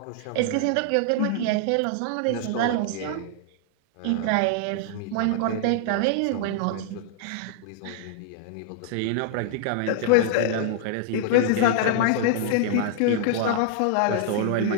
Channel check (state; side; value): different; both; correlation -0.01